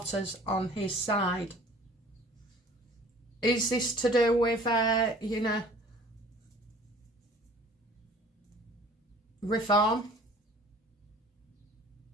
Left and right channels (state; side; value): normal; both; correlation 0.49